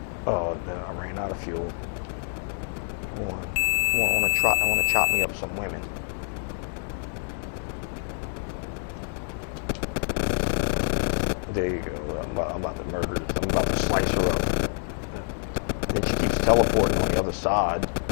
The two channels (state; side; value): silent; right; 60 dB below the other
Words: Oh, no, I ran out of fuel. I want to chop me up some women. There you go. I'm about to murder. I'm about to slice her up. And she keeps teleporting on the other side.